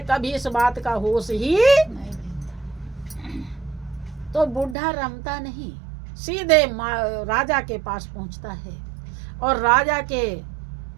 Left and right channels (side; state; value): left; drops out; at 4.8 s